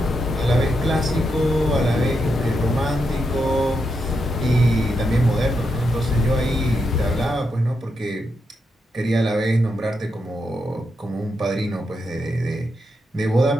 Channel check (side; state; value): both; normal; correlation 0.83